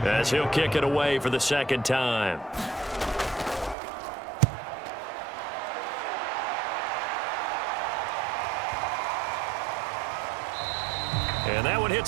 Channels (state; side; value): drops out; left; at 3.8 s